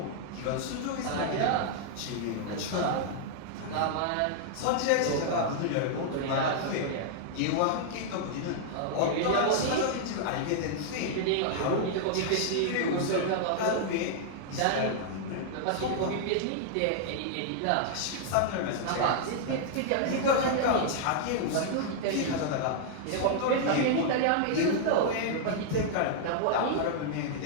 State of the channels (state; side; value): different; both; correlation -0.01